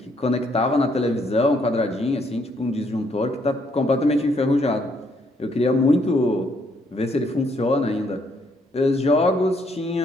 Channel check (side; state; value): both; normal; correlation 0.71